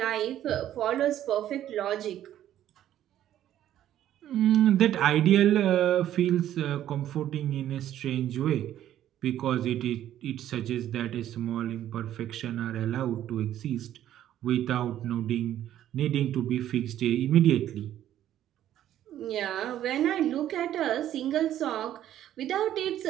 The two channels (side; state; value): left; quieter; 11.9 dB